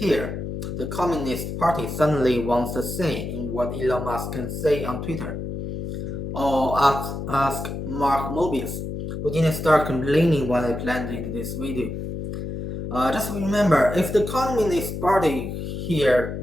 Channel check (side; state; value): left; noise; hum, 5 dB below the sound